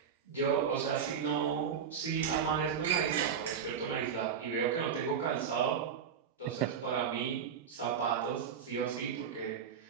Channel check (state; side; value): quieter; left; 7.3 dB